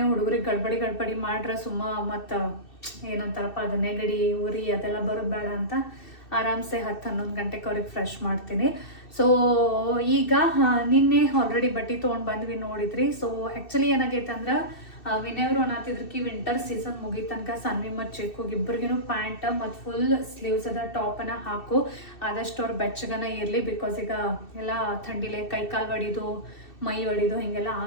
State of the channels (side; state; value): right; late; 2.6 ms